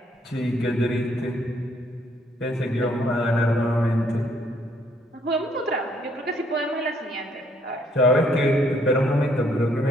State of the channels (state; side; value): normal; both; correlation 0.67